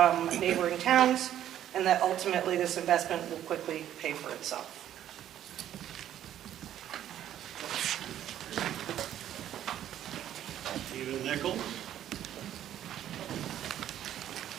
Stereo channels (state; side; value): quieter; left; 11.3 dB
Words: neighboring towns, and that ultimately this investment will quickly pay for itself. Stephen Nichols.